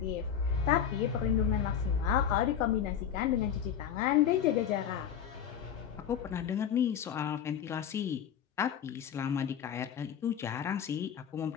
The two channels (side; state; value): right; quieter; 8.6 dB